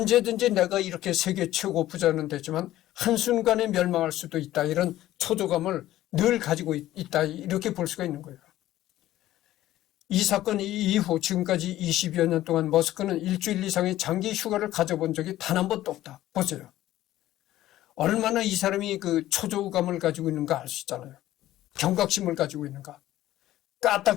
내가 이렇게 세계 최고 부자는 되지만 한순간에 멸망할 수도 있다 이런 초조감을 늘 가지고 있다 이렇게 볼 수가 있는 거예요. 이 사건 이후 지금까지 20여 년 동안 머스크는 일주일 이상의 장기 휴가를 가져본 적이 단 한 번도 없다. 보세요. 얼마나 이 사람이 그 초조감을 가지고 있는가 알 수 있잖아요. 경각심을 가지고 있는가.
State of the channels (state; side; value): quieter; right; 14.4 dB